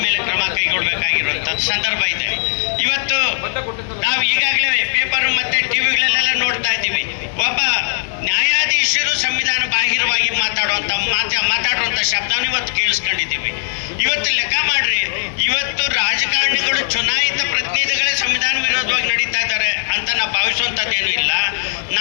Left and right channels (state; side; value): silent; right; digital silence